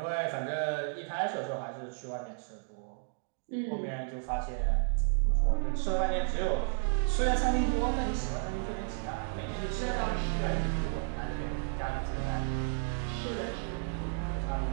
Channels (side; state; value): left; silent; digital silence